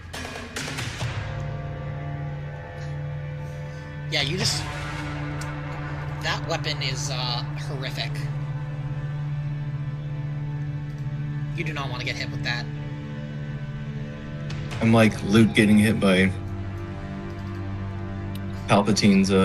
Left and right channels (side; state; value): both; identical; correlation 1.00